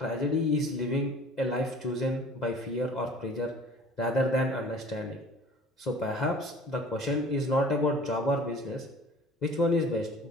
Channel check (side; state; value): both; normal; correlation 0.47